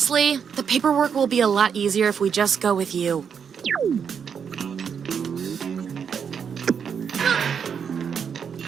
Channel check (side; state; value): left; quieter; 7.1 dB